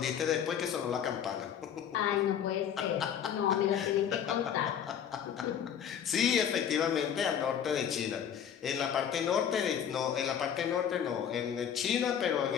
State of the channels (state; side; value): quieter; right; 8.7 dB